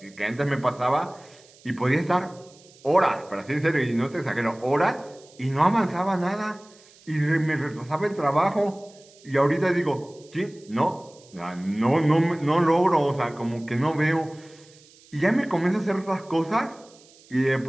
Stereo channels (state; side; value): noise; right; hiss, 26 dB below the sound